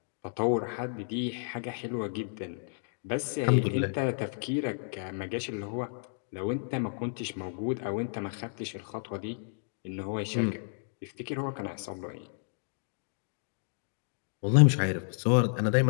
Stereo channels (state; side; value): silent; right; digital silence